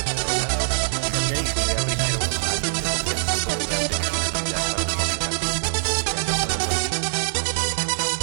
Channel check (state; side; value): silent; left; digital silence